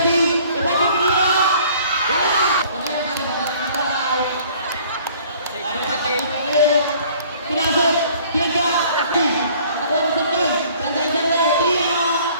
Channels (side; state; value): both; inverted; correlation -0.54